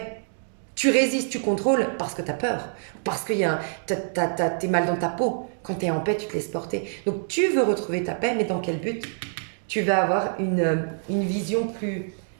Tu résistes, tu contrôles parce que tu as peur, parce que t'es mal dans ta peau. Quand tu es en paix, tu te laisses porter. Donc tu veux retrouver ta paix, mais dans quel but ? Tu vas avoir une vision plus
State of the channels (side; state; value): left; silent; digital silence